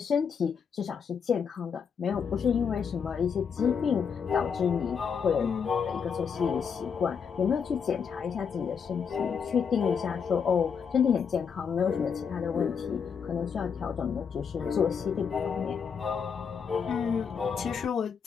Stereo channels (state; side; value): quieter; right; 6.6 dB